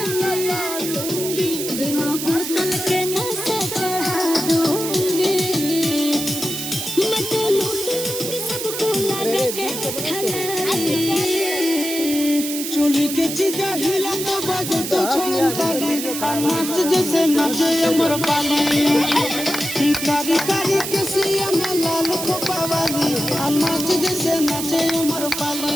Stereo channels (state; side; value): noise; right; hiss, 5 dB below the sound